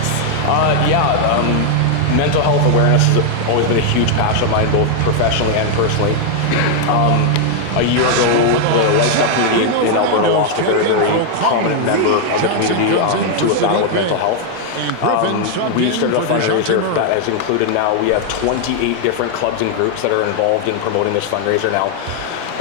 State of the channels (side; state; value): both; different; correlation 0.00